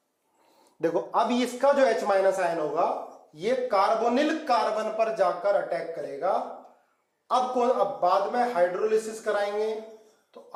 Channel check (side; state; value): both; identical; correlation 1.00